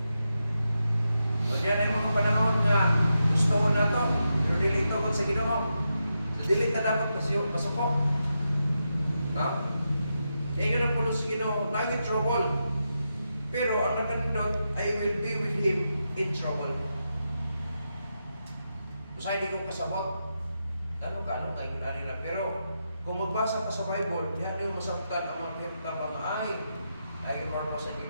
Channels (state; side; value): inverted; both; correlation -0.86